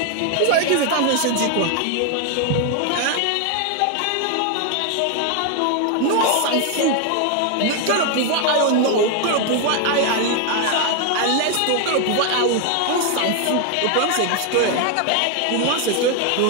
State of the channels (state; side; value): different; both; correlation 0.01